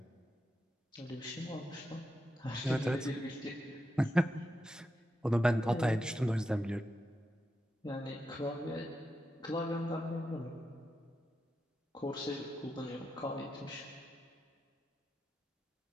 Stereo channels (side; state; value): both; normal; correlation 0.87